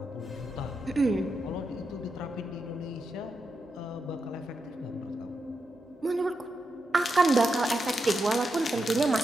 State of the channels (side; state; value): both; normal; correlation 0.86